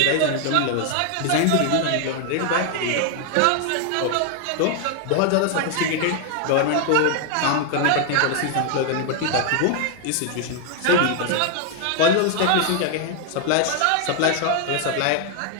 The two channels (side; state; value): both; different; correlation 0.00